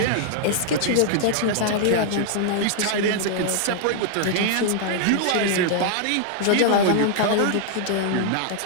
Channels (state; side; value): different; both; correlation -0.01